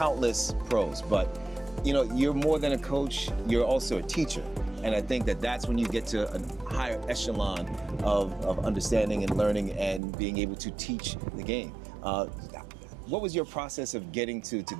pros, but you know, you're more than a coach, you're also a teacher. And I think that that's when you get to a higher echelon of understanding and learning and being able to teach the game. What was your process of getting to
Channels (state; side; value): drops out; left; at 10.0 s